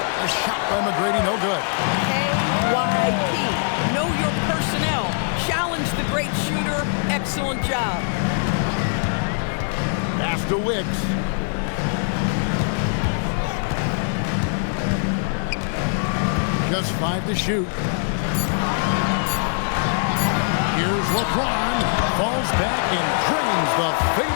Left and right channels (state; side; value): silent; right; digital silence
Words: shot by McGrady, no good. KYP. Know your personnel. Challenge the great shooter. Excellent job. Pass to Wicks. Just 5 to shoot. Here's LeBron. Falls back and drains the